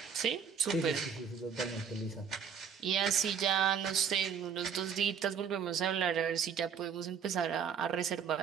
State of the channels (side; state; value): left; quieter; 7.2 dB